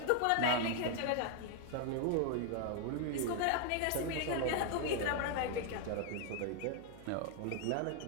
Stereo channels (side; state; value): both; different; correlation 0.00